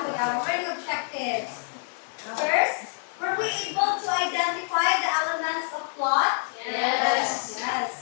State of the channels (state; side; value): silent; right; 60 dB below the other